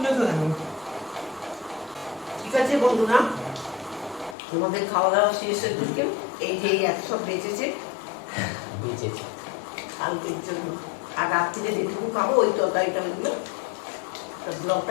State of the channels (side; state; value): right; drops out; at 4.4 s